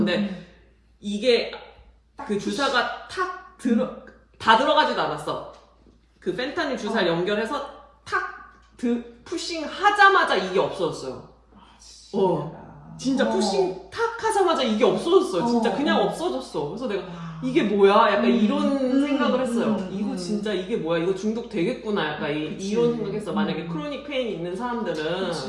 이게 그 주사가 다 들어가지도 않았어. 그 펜타닐 주사를 연결해서 푸싱 하자마자 이게 없어졌어요. 진짜 푸싱 탁 하자마자 이게 없어졌어요. 진짜 그냥 없어졌어. 그래서 내가 이게 뭐야? 약간 이런 생각을 했어요. 이거 진짜 이게 뭐야? 이거 중독 되겠구나. 약간 이런 생각했어. 만약에 크로닉 페인이 있는 사람들은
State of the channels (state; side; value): identical; both; correlation 1.00